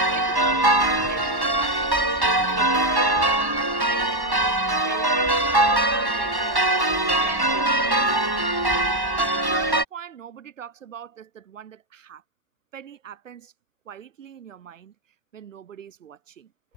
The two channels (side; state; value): left; late; 1.1 ms